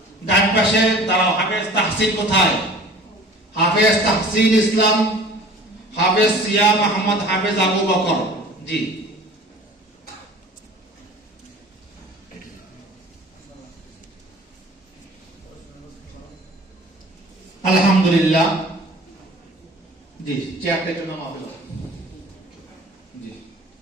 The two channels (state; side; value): normal; both; correlation 0.45